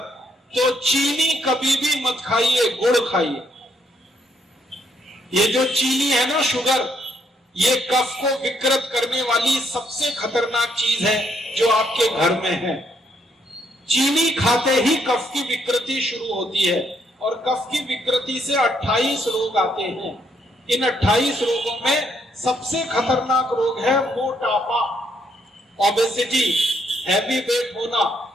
तो चीनी कभी भी मत खाइए, गुड़ खाइए। ये जो चीनी है ना, शुगर, ये कफ को विकृत करने वाली सबसे खतरनाक चीज है जो आपके घर में है। चीनी खाते ही कफ की विकृति शुरू होती है, और कफ की विकृति से 28 रोग आते हैं। इन 28 रोगों में सबसे खतरनाक रोग है मोटापा, ओबेसिटी, हैवी वेट होना,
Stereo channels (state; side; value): normal; both; correlation 0.72